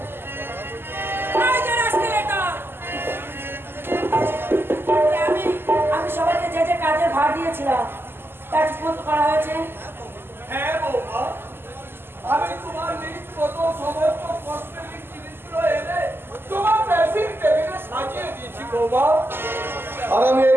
সবাইকে যে যে কাজের ভার দিয়েছিলাম তা ঠিকমতো করা হয়েছে? হ্যাঁ বৌমা, আমি তোমার লিস্ট মতো সমস্ত কসমেটিক জিনিসগুলো এনে তোমার ড্রেসিং টেবিলে সাজিয়ে দিয়েছি বৌমা। আর আমি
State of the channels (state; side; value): late; left; 0.11 ms